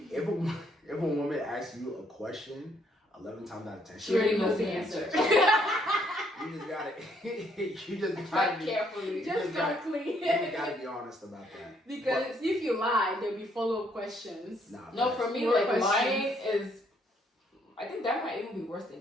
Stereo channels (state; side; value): normal; both; correlation 0.69